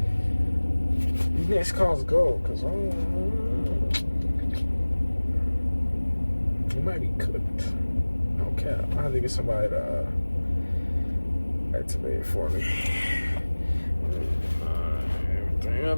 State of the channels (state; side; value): inverted; both; correlation -1.00